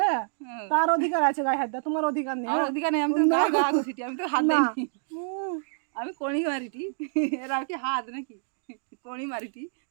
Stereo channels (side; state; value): left; silent; digital silence